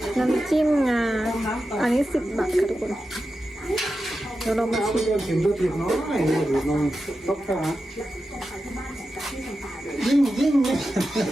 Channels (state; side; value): normal; both; correlation 0.91